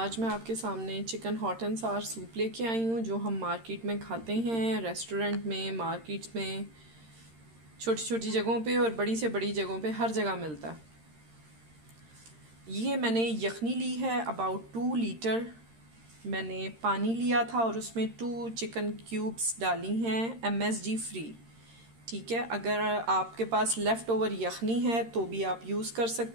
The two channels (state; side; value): late; left; 13 ms